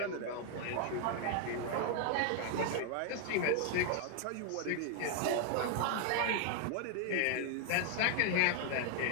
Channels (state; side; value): different; both; correlation 0.00